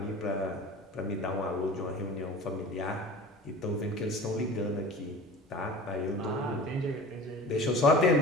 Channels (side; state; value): both; normal; correlation 0.39